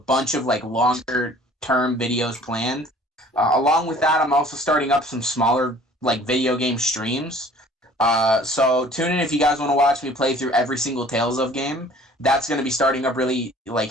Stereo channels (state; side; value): normal; both; correlation 0.51